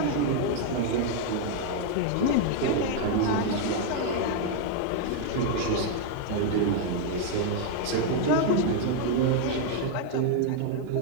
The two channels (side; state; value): both; different; correlation 0.00